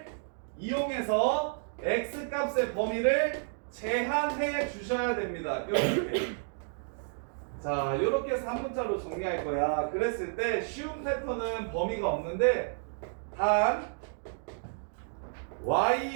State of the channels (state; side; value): silent; left; digital silence